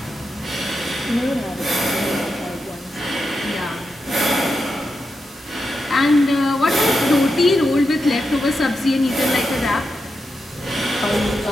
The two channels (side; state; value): both; normal; correlation 0.87